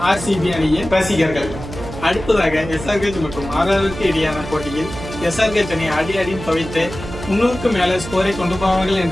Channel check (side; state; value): right; noise; hum, 11 dB below the sound